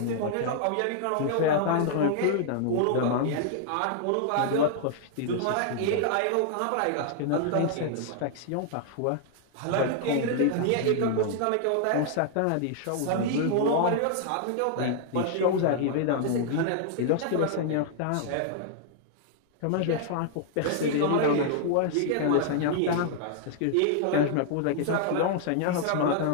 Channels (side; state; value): both; different; correlation 0.00